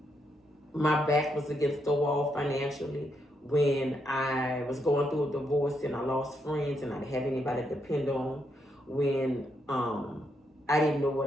my back was against the wall financially, when I was going through a divorce and I lost friends and I didn't have anybody to depend on, when I didn't know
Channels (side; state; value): both; normal; correlation 0.79